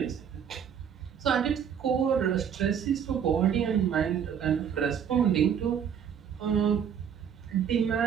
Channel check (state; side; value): quieter; left; 8.1 dB